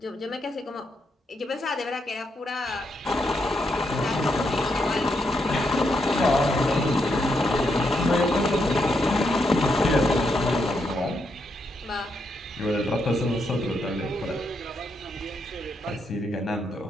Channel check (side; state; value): both; normal; correlation 0.80